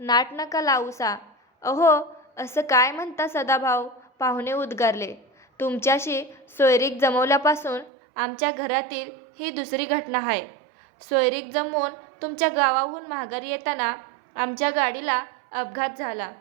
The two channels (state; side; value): drops out; left; at 7.9 s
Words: नाट नका लावूसा. अहो, असं काय म्हणता सदाभाऊ, पाहुणे उद्गारले. तुमच्याशी सोयरीक जमवल्यापासून आमच्या घरातील ही दुसरी घटना आहे. सोयरीक जमवून तुमच्या गावाहून माघारी येताना आमच्या गाडीला अपघात झाला,